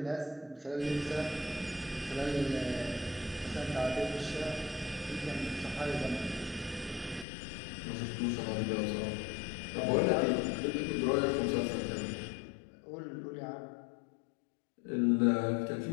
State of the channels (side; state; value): right; drops out; at 7.2 s